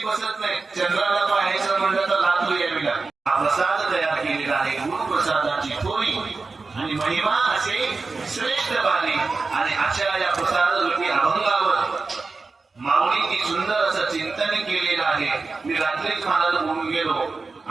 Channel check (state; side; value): quieter; left; 4.0 dB